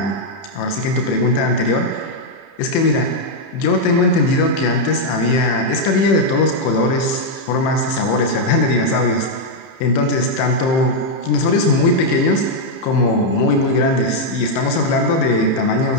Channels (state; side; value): late; right; 30 ms